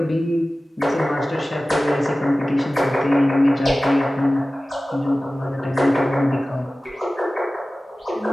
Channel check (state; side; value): normal; both; correlation 0.97